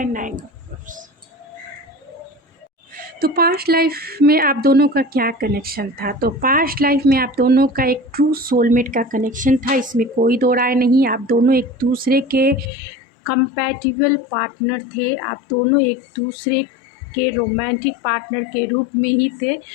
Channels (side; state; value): right; drops out; at 12.7 s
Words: नाइन ऑफ कप्स। तो पास्ट लाइफ में आप दोनों का क्या कनेक्शन था। तो पास्ट लाइफ में आप दोनों का एक ट्रू सोलमेट का कनेक्शन था, इसमें कोई दो राय नहीं। आप दोनों एक दूसरे के कंपैटिबल पार्टनर थे, आप दोनों एक दूसरे के रोमांटिक पार्टनर के रूप में ही थे।